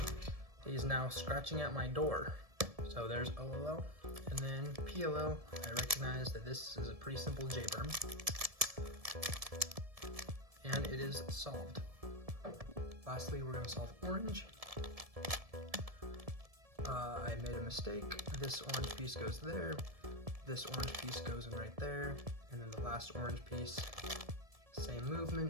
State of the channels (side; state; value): left; late; 1.7 ms